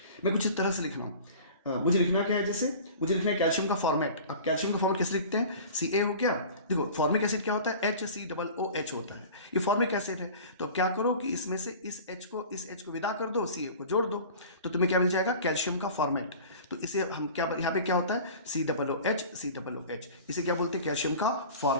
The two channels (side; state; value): both; inverted; correlation -0.40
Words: मैं कुछ इस तरह से लिख रहा हूं, मुझे लिखना क्या है, जैसे मुझे लिखना है कैल्शियम का फॉर्मेट। अब कैल्शियम का फॉर्मेट कैसे लिखते हैं, Ca हो गया। देखो फॉर्मिक एसिड क्या होता है, HCOOH होता है, ये फॉर्मिक एसिड है। तो क्या करो कि इसमें से इस H को विदा कर दो, Ca को जोड़ दो, तो तुम्हें क्या मिल जाएगा, कैल्शियम का फॉर्मेट। तो इसे हम क्या, यहाँ पे क्या होता है, COOH, इसे क्या बोलते हैं, कैल्शियम का